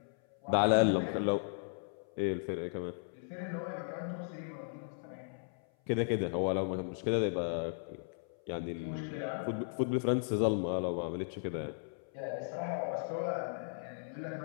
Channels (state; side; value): silent; right; 54 dB below the other